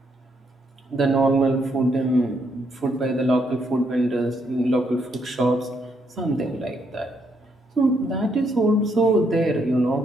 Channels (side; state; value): both; normal; correlation 0.75